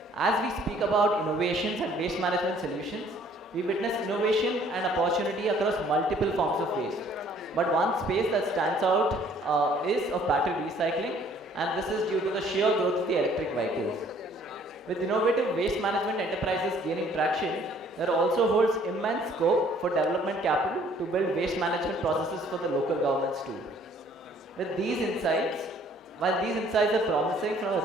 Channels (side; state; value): both; normal; correlation 0.59